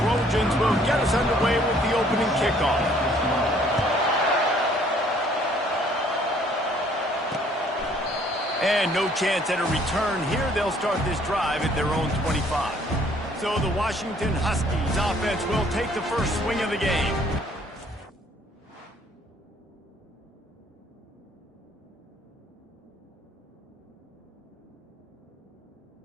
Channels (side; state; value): both; normal; correlation 0.61